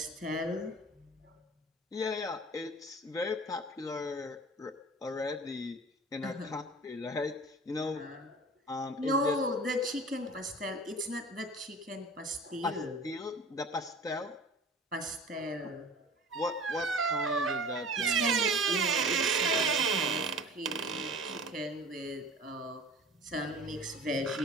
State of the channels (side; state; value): both; normal; correlation 0.40